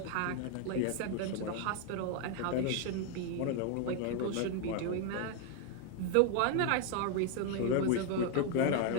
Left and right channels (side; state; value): both; different; correlation 0.01